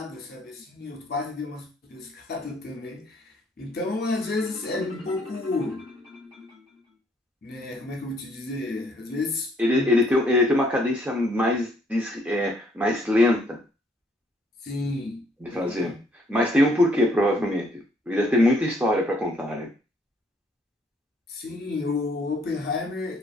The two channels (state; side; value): normal; both; correlation 0.66